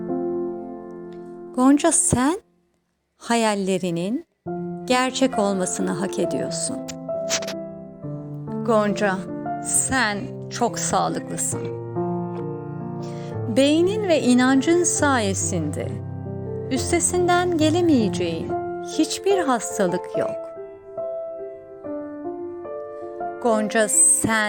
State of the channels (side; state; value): both; identical; correlation 1.00